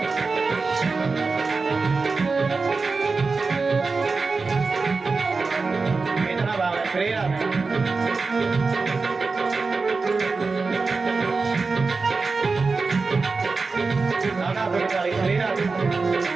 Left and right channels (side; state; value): left; quieter; 4.2 dB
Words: इतना भाव है श्री राधे। नाना तो ताली श्री राधे।